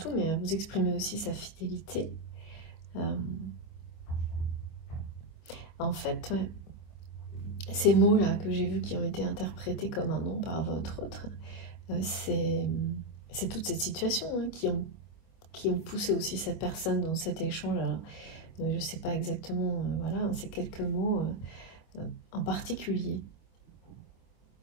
mais à vous exprimer aussi sa fidélité. En fait, ouais, ces mots-là que j'ai vus qui ont été interprétés comme un nom par votre autre, c'est toute cette situation, hein, qui ont poussé aussi cette personne dans cet échange. Alors, je ne sais pas exactement, voilà, c'est quelques mots en particulier.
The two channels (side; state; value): right; late; 25 ms